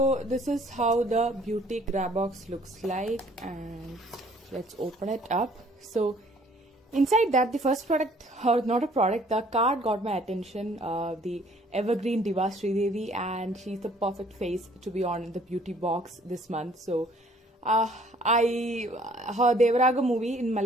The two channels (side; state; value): both; normal; correlation 0.58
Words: this is how the Beauty Grabox looks like, and let's open it up. So inside that, the first product, or not a product, the card got my attention. The Evergreen Diva Sridevi, and she's the perfect face to be on the beauty box this month. So her Devaraga movie in